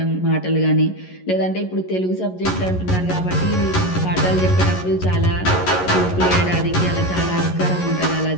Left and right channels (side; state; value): right; late; 11 ms